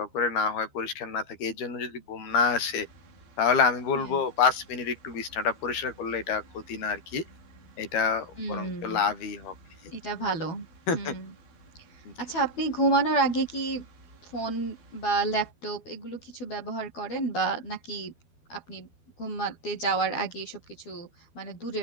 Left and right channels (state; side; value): late; right; 12 ms